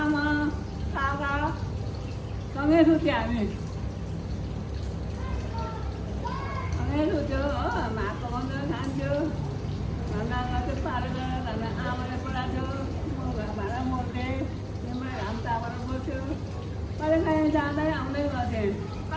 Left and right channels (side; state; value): both; identical; correlation 1.00